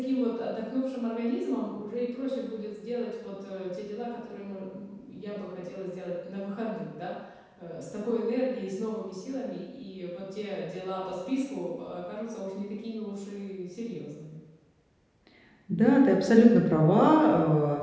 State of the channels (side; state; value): both; identical; correlation 1.00